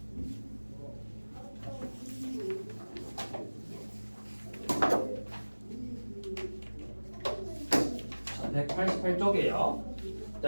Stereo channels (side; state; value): both; inverted; correlation -1.00